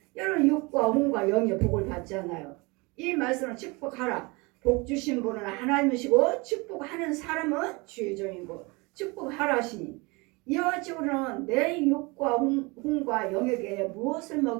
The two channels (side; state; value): left; quieter; 26.6 dB